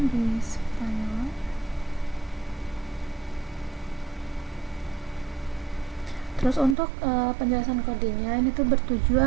di spell. Terus untuk penjelasan kodenya ini tuh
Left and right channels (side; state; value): left; drops out; at 6.8 s